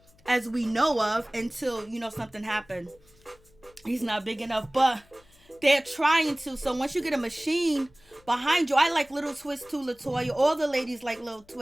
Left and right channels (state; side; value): noise; left; hum, 30 dB below the sound